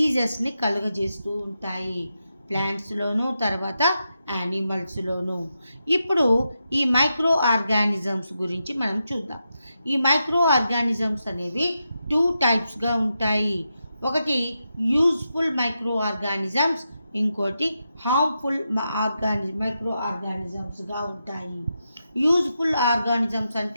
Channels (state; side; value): inverted; both; correlation -0.87